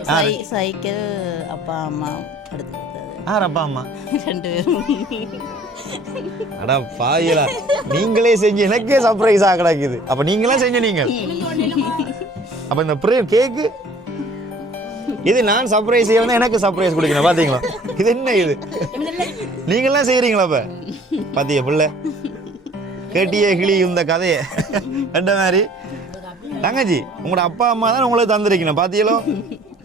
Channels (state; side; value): normal; both; correlation 0.52